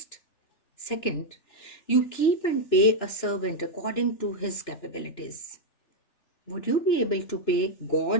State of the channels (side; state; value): right; late; 2.9 ms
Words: Second, you keep and pay a servant according to his capabilities. Would you be able to pay